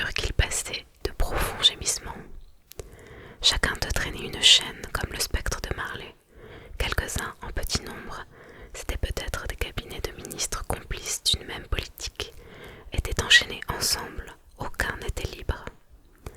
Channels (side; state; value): both; identical; correlation 1.00